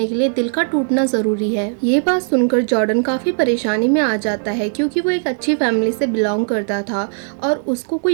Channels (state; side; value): silent; left; 67 dB below the other